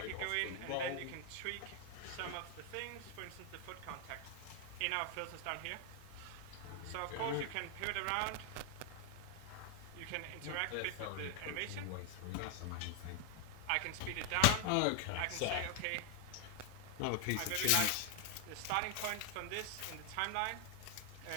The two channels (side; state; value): both; different; correlation 0.00